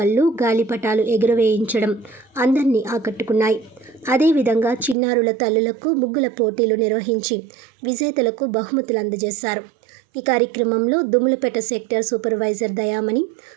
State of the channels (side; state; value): left; drops out; at 5.0 s